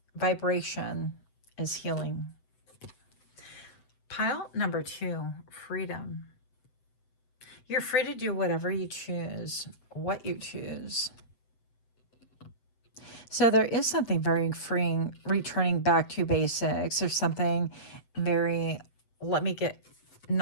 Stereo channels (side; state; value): right; late; 7.9 ms